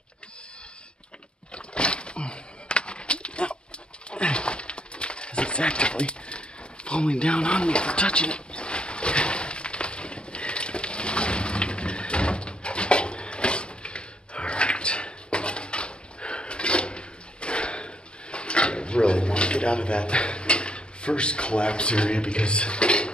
As it's actively falling down on me for touching it. Alright. I really want to get out of that first collapse area because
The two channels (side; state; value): right; late; 0.055 ms